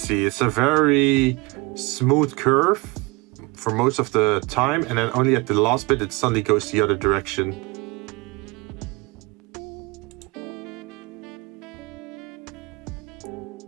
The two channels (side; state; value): left; quieter; 25.3 dB